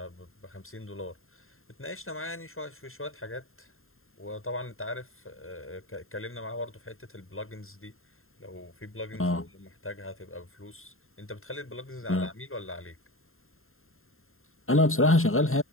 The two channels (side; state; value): right; late; 0.61 ms